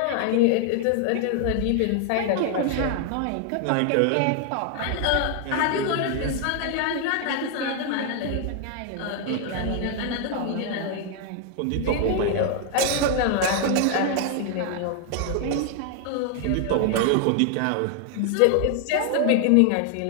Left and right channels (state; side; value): different; both; correlation 0.00